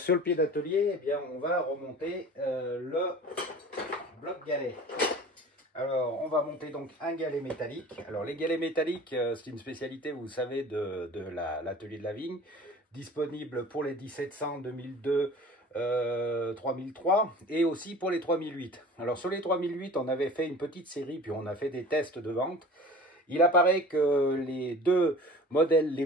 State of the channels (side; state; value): both; normal; correlation 0.42